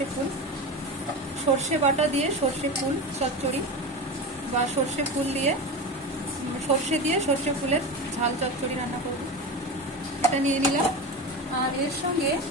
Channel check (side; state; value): both; normal; correlation 0.24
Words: ফুল। সর্ষে বাটা দিয়ে সর্ষে ফুল চচ্চড়ি বা সর্ষে ফুল দিয়ে সর্ষে দিয়ে সর্ষে ফুলের ঝাল চচ্চড়ি রান্না করব। এটা নিয়ে নিলাম। আর এর সঙ্গে